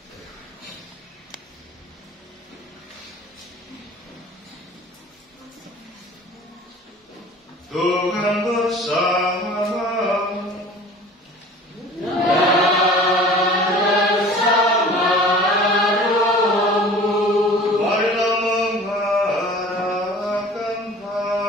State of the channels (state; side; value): normal; both; correlation 0.44